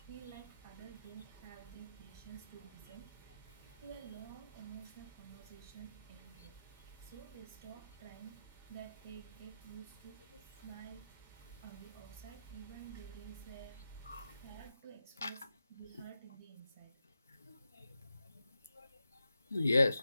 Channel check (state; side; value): inverted; both; correlation -0.88